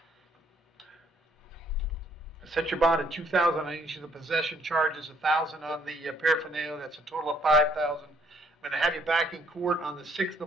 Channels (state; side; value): normal; both; correlation 0.65